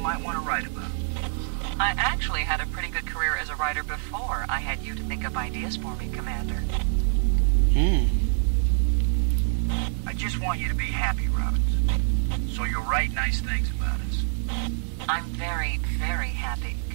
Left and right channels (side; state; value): left; silent; digital silence